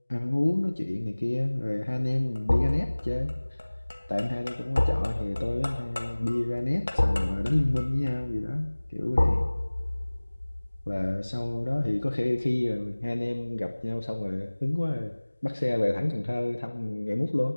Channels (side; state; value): both; inverted; correlation -1.00